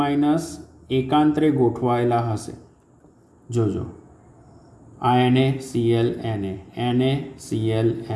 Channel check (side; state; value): both; identical; correlation 1.00